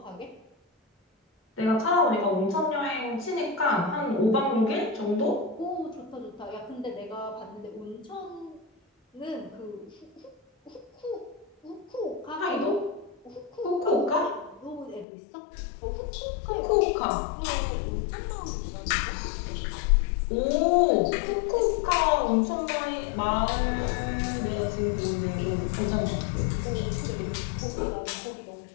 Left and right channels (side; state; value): right; drops out; at 15.1 s